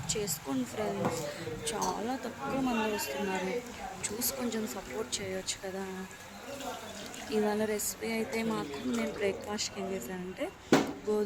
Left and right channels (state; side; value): identical; both; correlation 1.00